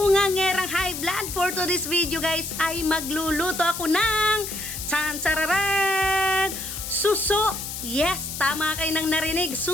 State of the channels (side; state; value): left; noise; hiss, 7 dB below the sound